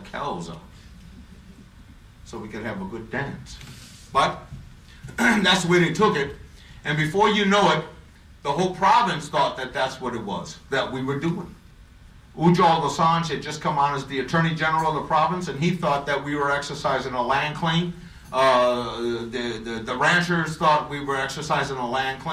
cows out so we could have a good dance. But that's the way they took it, and before you know it, the whole province thought that that's what it was, that we were doing. Ujjal Dosanjh had just come on as the Attorney General of the province, and he thought that we were exercising a land claim. The ranchers thought we were exercising a land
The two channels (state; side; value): identical; both; correlation 1.00